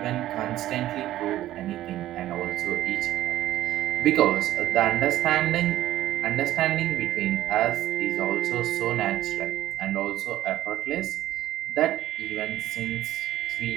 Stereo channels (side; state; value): left; quieter; 13.9 dB